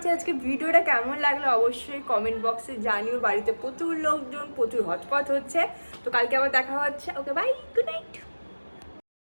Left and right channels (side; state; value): both; inverted; correlation -1.00